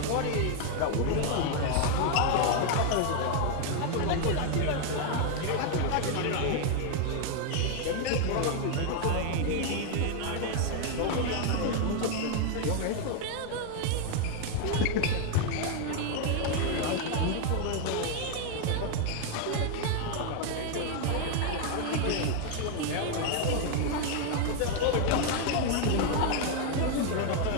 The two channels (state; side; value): different; both; correlation 0.00